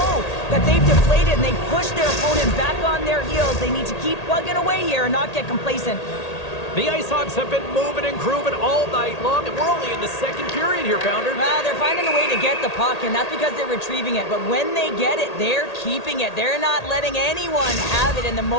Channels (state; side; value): late; right; 1.8 ms